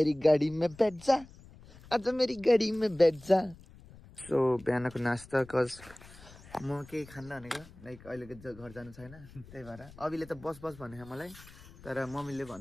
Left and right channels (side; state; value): left; noise; rumble, 21 dB below the sound